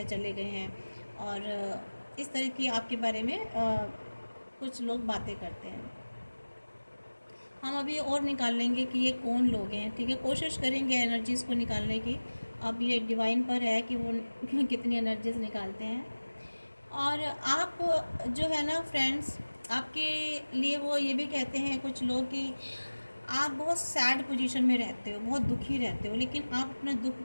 चले गए हैं। और इस तरह की आपके बारे में कुछ लोग बातें करते हैं। हम अभी और निकाल लेंगे कि ये कौन लोग हैं, ठीक है। कोशिश करेंगे एनर्जीज़ को निकालने की। अब ये डिवाइन पर है कि वो कितनी एनर्जीज निकालते हैं। और आप जो है ना फ्रेंड्स, आपके लिए वो ये भी कहते हैं कुछ लोग कि आप बहुत सैड पोजीशन में रहते हो, बहुत दुखी रहते हो, लेकिन आप अपने दुख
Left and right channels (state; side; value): inverted; both; correlation -1.00